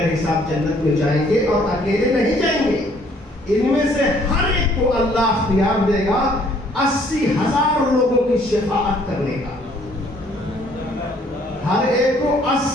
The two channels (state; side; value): normal; both; correlation 0.62